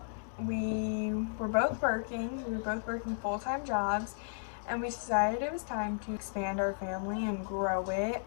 we were both working full-time jobs, and we decided it was time to expand our family and grow it.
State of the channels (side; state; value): right; silent; digital silence